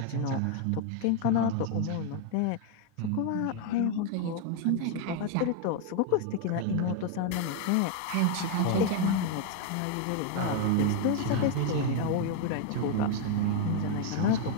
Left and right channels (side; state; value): both; different; correlation 0.00